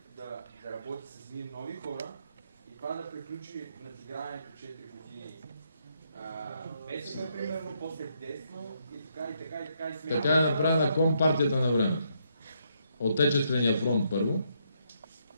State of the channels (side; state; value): both; inverted; correlation -0.75